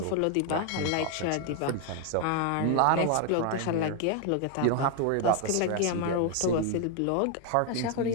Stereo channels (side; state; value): both; different; correlation 0.00